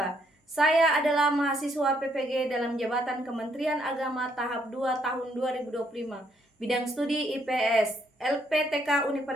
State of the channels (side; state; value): both; normal; correlation 0.71